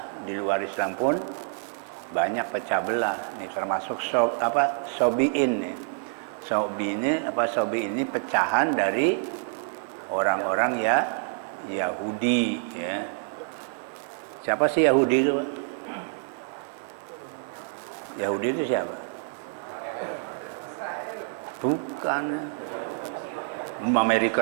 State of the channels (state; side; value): silent; left; digital silence